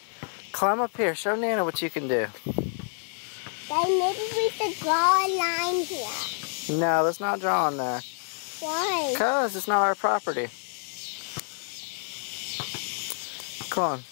climb up here. Show Nana what you can do. Then maybe we should draw a line here. No, let's not draw on there. Why? Because it's not our property. Come on.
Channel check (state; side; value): silent; right; 60 dB below the other